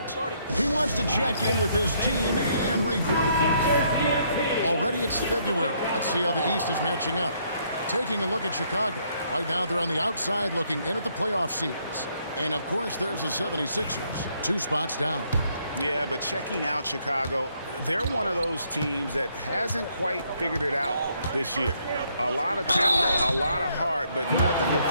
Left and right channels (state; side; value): inverted; both; correlation -0.70